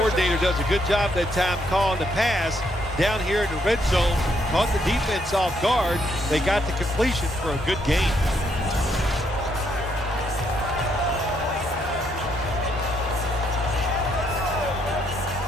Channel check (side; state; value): both; normal; correlation 0.73